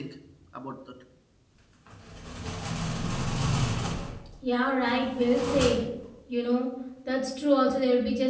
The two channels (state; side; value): identical; both; correlation 1.00